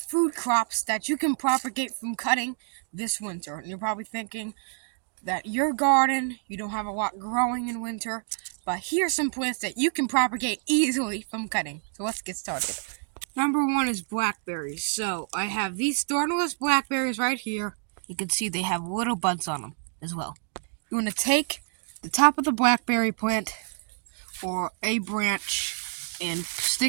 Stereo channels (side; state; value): left; silent; 60 dB below the other